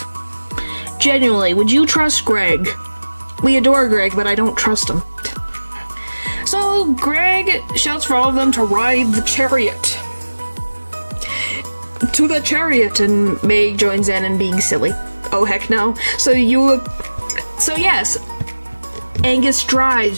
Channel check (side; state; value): both; inverted; correlation -1.00